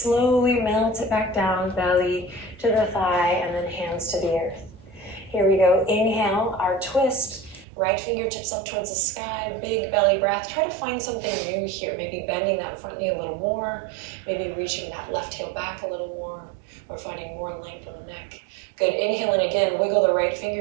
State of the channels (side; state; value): left; drops out; at 7.7 s